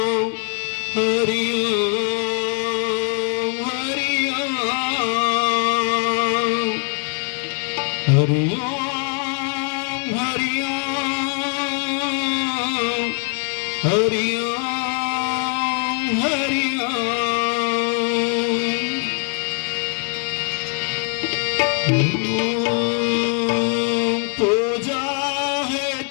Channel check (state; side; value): quieter; right; 38.2 dB